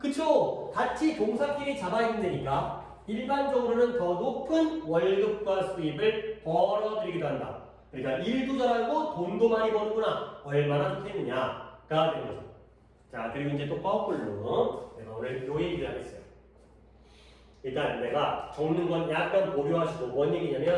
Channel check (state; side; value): identical; both; correlation 1.00